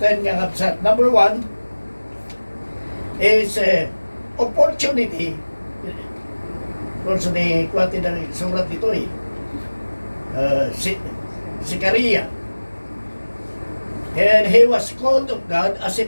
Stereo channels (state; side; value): inverted; both; correlation -1.00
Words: nga kapsat. Number 1 is opportunity course, kwati ng surat ito eh. Si Karia. And he was called of God as a